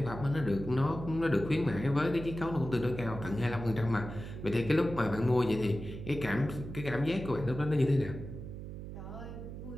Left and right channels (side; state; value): right; noise; hum, 9 dB below the sound